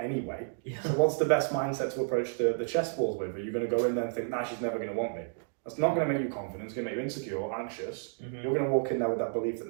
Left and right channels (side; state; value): left; silent; digital silence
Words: anyway. Yeah. So what's the best mindset to approach the chessboard with? Are you going to go in there and think, nah, she's never going to want me? That's not going to make you confident. It's going to make you insecure or anxious. You're going to walk in there with that belief that